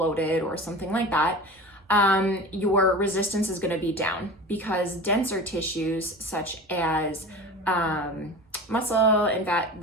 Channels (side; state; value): both; normal; correlation 0.34